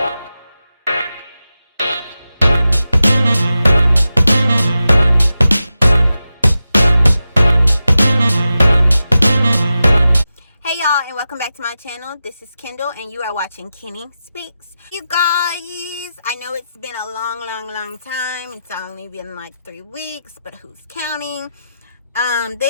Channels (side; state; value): both; inverted; correlation -0.91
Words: Hey y'all, and welcome back to my channel. This is Kendall and you are watching Keni Speaks. You guys, I know it's been a long time. It's only been like 3 weeks, but who's counting?